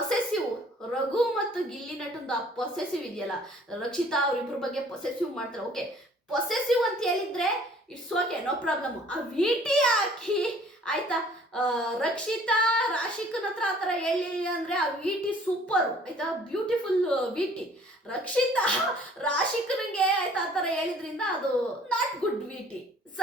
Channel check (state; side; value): normal; both; correlation 0.55